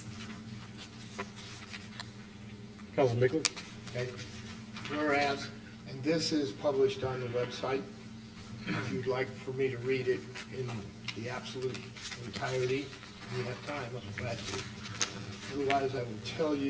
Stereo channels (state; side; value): identical; both; correlation 1.00